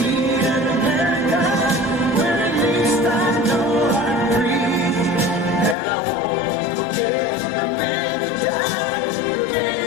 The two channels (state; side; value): drops out; right; at 5.8 s